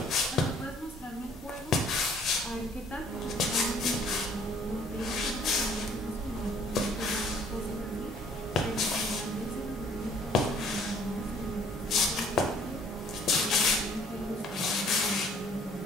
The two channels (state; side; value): normal; both; correlation 0.58